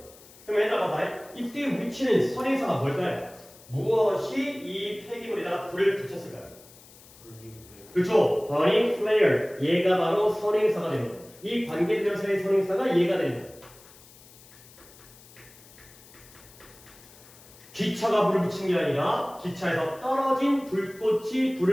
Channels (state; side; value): noise; left; hiss, 23 dB below the sound